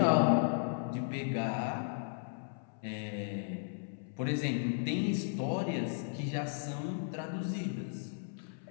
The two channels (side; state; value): right; silent; 54 dB below the other